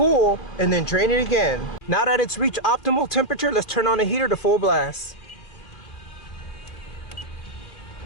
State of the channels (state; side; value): late; right; 2.5 ms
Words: and then drain it again. Now that it's reached optimal temperature, let's turn on the heater to full blast.